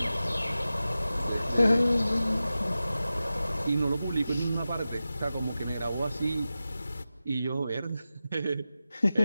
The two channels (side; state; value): both; inverted; correlation -0.94